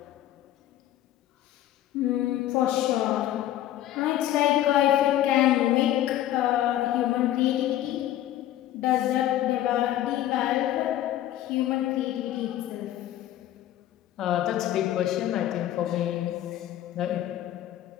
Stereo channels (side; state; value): right; quieter; 13.0 dB